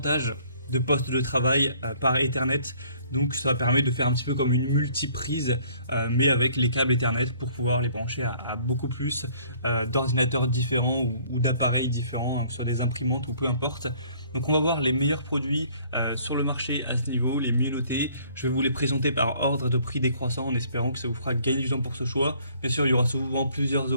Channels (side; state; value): both; inverted; correlation -0.58